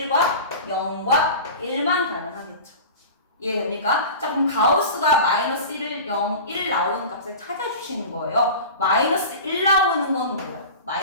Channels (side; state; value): both; inverted; correlation -0.33